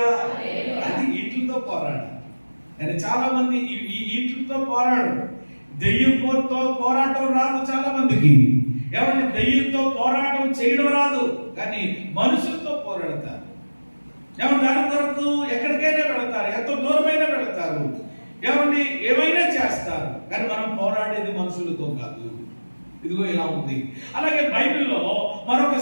అది వీటితో పోరాడు. కానీ చాలా మంది వీటితో పోరాడు. దెయ్యంతో పోరాటం రాదు చాలా మందికి. ఏమంటే దెయ్యంతో పోరాటం చేయడం రాదు, కానీ మనుషులతో పోరాడతారు. ఏమంటే దాని కొరకు ఎక్కడికైనా వెళతారు, ఎంత దూరమైనా వెళతారు, ఏమండి ఏమైనా చేస్తారు, కానీ మనం పోరాడేది మనుషులతో కాదు. ఇదిగో ఇలా ఉంది. అలాగే బైబిల్లో మరొక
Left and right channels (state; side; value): inverted; both; correlation -1.00